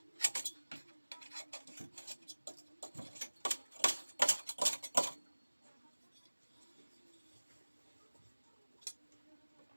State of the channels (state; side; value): inverted; both; correlation -1.00